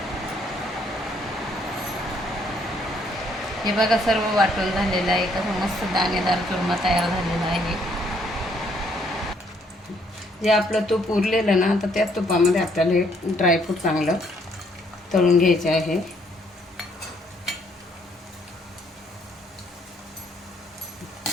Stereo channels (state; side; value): normal; both; correlation 0.68